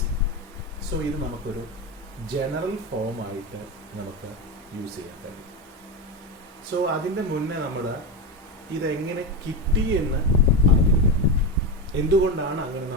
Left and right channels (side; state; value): both; normal; correlation 0.16